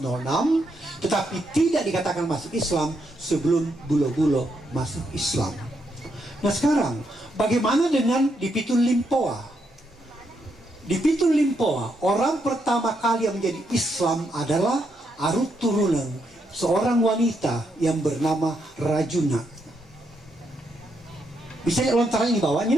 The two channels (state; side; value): normal; both; correlation 0.79